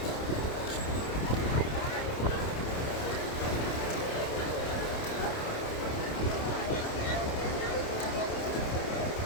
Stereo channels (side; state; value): right; late; 28 ms